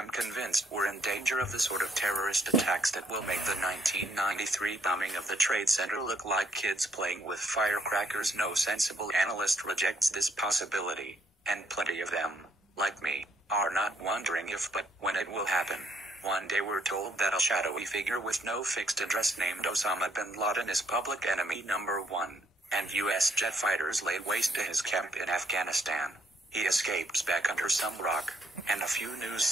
convinced we're in danger of the sort of terrorist attacks that will make the 1993 bombing of the Trade Center look like kids playing with firecrackers. No sensible analyst rejects this possibility, and plenty of them, like me, are not wondering if but when it will happen. One day we're told that a shadowy figure with no fixed address named Osama bin Laden is public enemy number 1, and U.S. jet fighters laid waste to his camp in Afghanistan. He escapes back under some rock, and a few news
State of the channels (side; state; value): both; normal; correlation 0.70